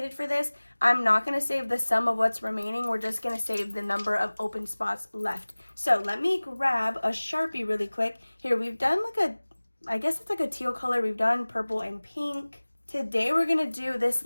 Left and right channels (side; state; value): both; inverted; correlation -1.00